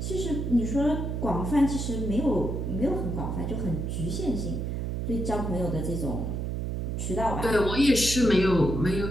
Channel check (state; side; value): noise; right; hum, 2 dB below the sound